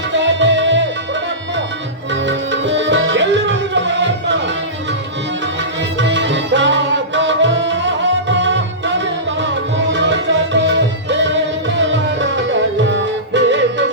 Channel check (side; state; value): both; normal; correlation -0.20